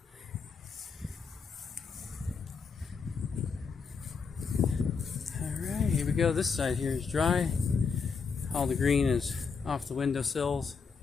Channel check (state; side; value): quieter; right; 5.4 dB